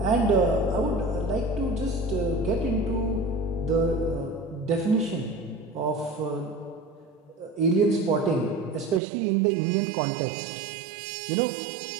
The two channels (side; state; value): left; drops out; at 9.0 s